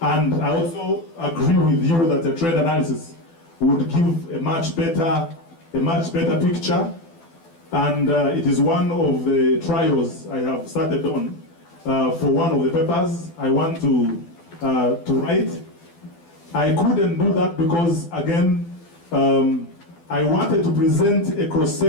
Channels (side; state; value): right; late; 12 ms